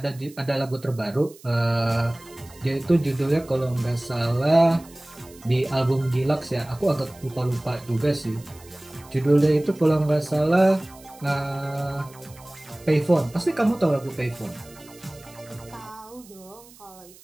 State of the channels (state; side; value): noise; right; hiss, 23 dB below the sound